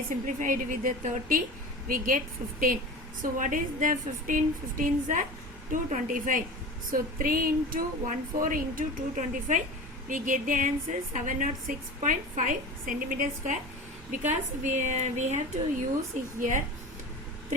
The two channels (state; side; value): normal; both; correlation 0.33